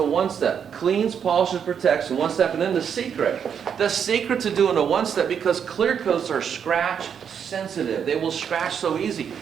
Cleans, polishes, protects in 1 step. And then the secret to doing a 1-step, because clear coats are scratch sensitive. They will scratch so easy.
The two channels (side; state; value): left; quieter; 7.7 dB